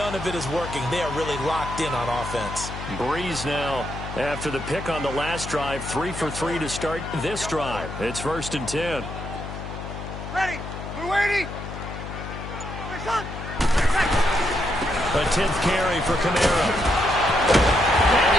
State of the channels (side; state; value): left; noise; hum, 9 dB below the sound